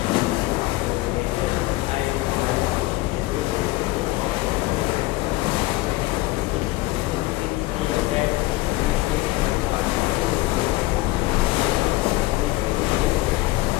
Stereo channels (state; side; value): quieter; right; 19.7 dB